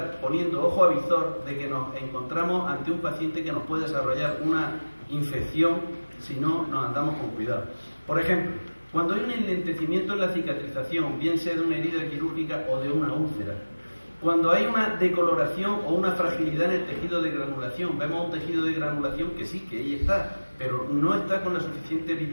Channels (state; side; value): inverted; both; correlation -1.00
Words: poniendo ojo a visor de que nos encontramos ante un paciente que nos puede desarrollar una infección si no nos andamos con cuidado. Por ejemplo, cuando hay un enlentecimiento en la cicatrización, bien sea de una herida quirúrgica o de una úlcera, cuando hay una decoloración o una fragilidad en el tejido de granulación, vemos un tejido de granulación que sí, que ahí está, pero no está con la suficiente